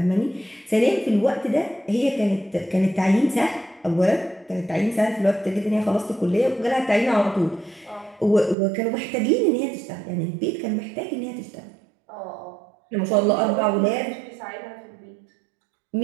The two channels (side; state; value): left; drops out; at 8.6 s